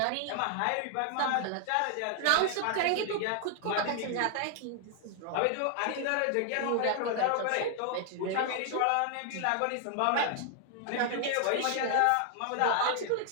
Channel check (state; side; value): different; both; correlation 0.00